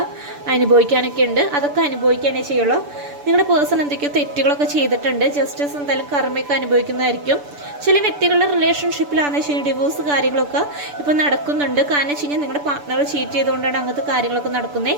അനുഭവിക്കാനൊക്കെ ഉണ്ട്. അതൊക്കെ അനുഭവിക്കാനേ ചെയ്യുള്ളൂ. നിങ്ങളുടെ പേഴ്സൺ എന്തൊക്കെയോ തെറ്റുകളൊക്കെ ചെയ്തിട്ടുണ്ട്. ജസ്റ്റിസ് എന്തായാലും കർമ്മയൊക്കെ അനുഭവിക്കുന്നതായിരിക്കും. ചില വ്യക്തികളുടെ റിലേഷൻഷിപ്പിലാണെന്ന് വെച്ച് കഴിഞ്ഞാൽ ഡിവോഴ്സ് കാര്യങ്ങളൊക്കെ ഇപ്പോൾ നടക്കുന്നുണ്ട്. കാരണം വെച്ച് കഴിഞ്ഞാൽ നിങ്ങളുടെ പാർട്ണർ ചീറ്റ് ചെയ്തുകൊണ്ടാണ് അങ്ങനത്തെ കാര്യങ്ങളൊക്കെ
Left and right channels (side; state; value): left; late; 6.9 ms